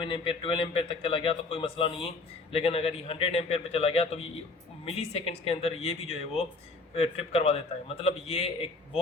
एम्पेयर 12 एम्पेयर तक चला गया तो कोई मसला नहीं है। लेकिन अगर ये 100 एम्पेयर पे चला गया तो ये मिली सेकेंड्स के अंदर ये भी जो है वो ट्रिप करवा देता है। मतलब ये एक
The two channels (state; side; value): quieter; right; 3.6 dB